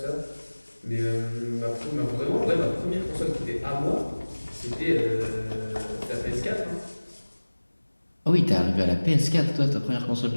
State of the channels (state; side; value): inverted; both; correlation -1.00